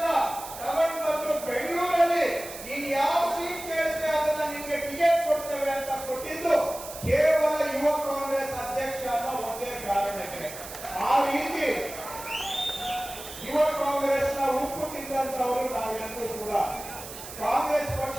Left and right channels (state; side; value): noise; right; hiss, 12 dB below the sound